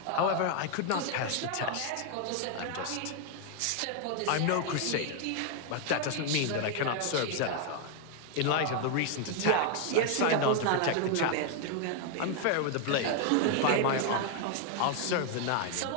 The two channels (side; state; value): both; different; correlation 0.01